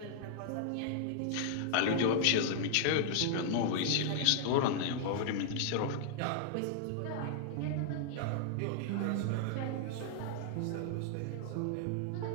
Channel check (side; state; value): both; different; correlation -0.01